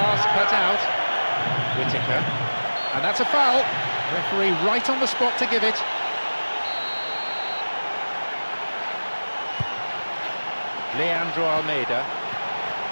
cut out. Whittaker. And that's a foul. Referee right on the spot to give it. Leandro Almeida.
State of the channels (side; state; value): both; inverted; correlation -1.00